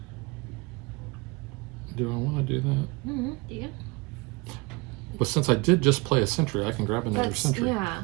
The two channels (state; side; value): quieter; left; 25.7 dB